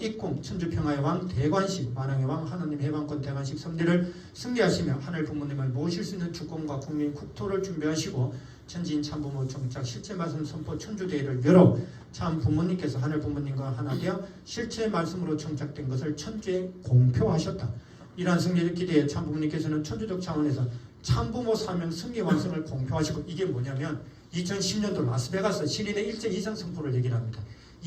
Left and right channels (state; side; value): identical; both; correlation 1.00